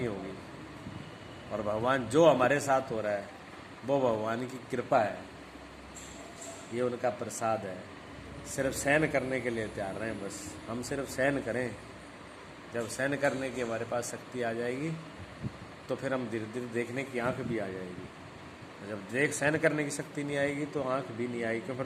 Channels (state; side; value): identical; both; correlation 1.00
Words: होगी। और भगवान जो हमारे साथ हो रहा है वो भगवान की कृपा है, ये उनका प्रसाद है। सिर्फ सहन करने के लिए तैयार रहें, बस हम सिर्फ सहन करें। जब सहन करने की हमारे पास शक्ति आ जाएगी तो फिर हम धीरे धीरे देखने की आंख भी आ जाएगी। जब देख सहन करने की शक्ति नहीं आएगी तो आंख भी नहीं आएगी,